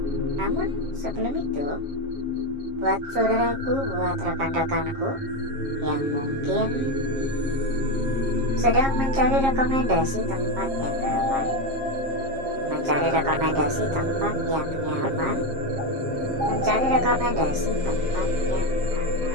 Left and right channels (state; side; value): late; left; 7.4 ms